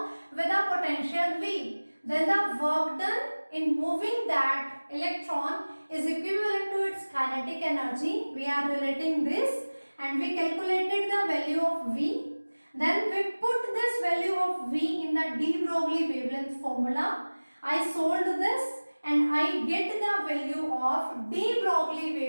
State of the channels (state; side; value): inverted; both; correlation -1.00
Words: with a potential V. Then the work done in moving that electron is equivalent to its kinetic energy. We are relating this and we calculated the value of V. Then we put this value of V in the de Broglie wavelength formula. I solved this and I get the value of de Broglie